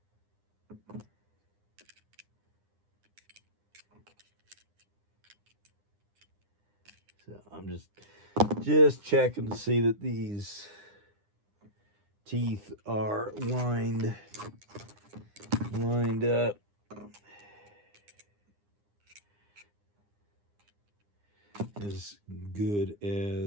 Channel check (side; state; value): left; late; 9.8 ms